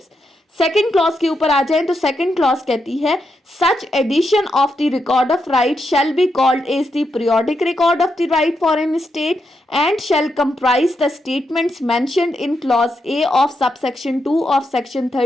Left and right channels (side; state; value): both; normal; correlation 0.83